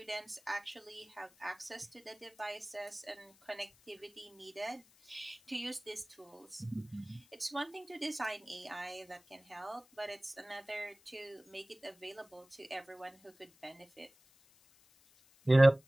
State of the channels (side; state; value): left; noise; hiss, 28 dB below the sound